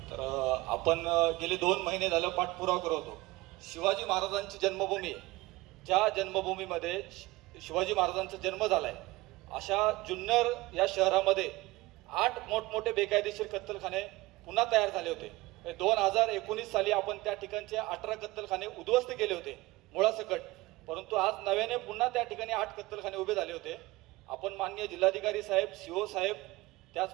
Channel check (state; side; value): quieter; left; 20.4 dB